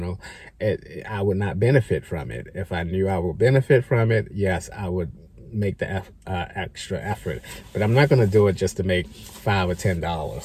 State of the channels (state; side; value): identical; both; correlation 1.00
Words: I would not benefit from it. If I knew I would benefit from it, yes, I would make the extra effort. But I'm not going to do it just to make $5 or